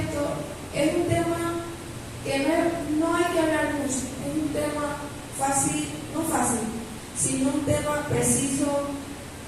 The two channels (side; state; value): both; identical; correlation 1.00